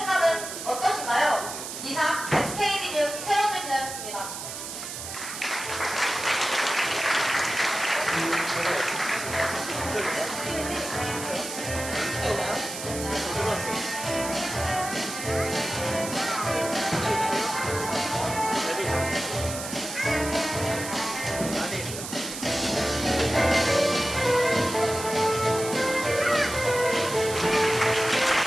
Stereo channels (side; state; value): right; noise; hiss, 8 dB below the sound